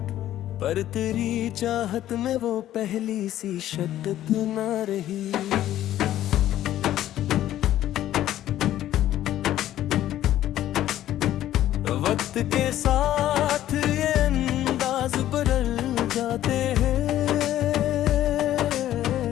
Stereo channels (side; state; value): right; quieter; 12.9 dB